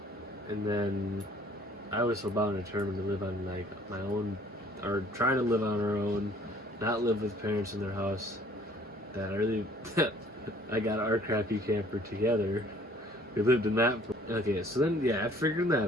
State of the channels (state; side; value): normal; both; correlation 0.56